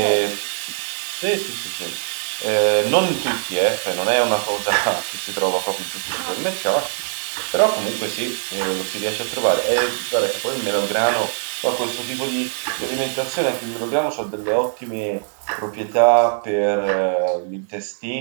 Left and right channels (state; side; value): silent; left; digital silence